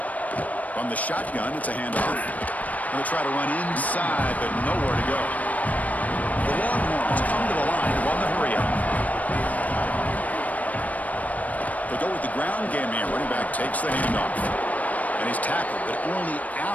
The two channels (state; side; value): late; right; 0.072 ms